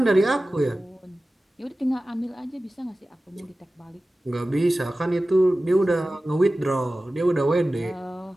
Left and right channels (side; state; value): both; normal; correlation 0.96